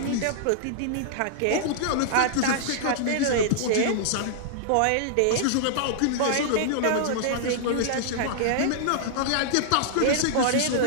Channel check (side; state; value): both; different; correlation -0.01